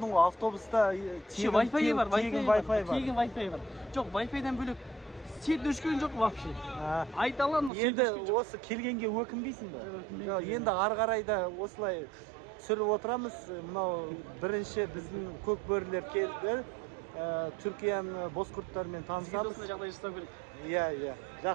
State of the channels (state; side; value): drops out; left; at 7.7 s